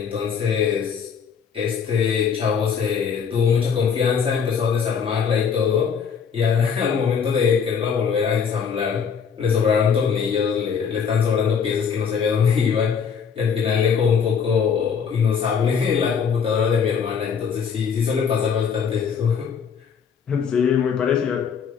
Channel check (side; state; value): right; quieter; 6.7 dB